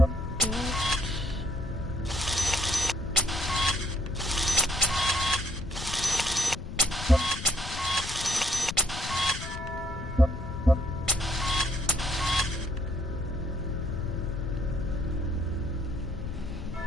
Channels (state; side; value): noise; left; rumble, 9 dB below the sound